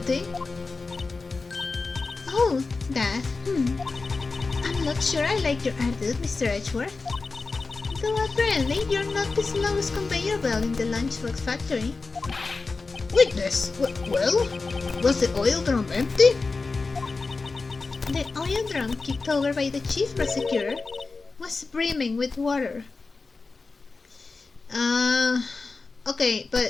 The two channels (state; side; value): quieter; right; 4.0 dB